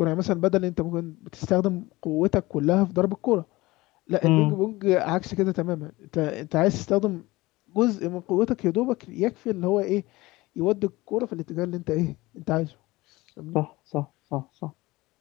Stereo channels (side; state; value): right; quieter; 20.3 dB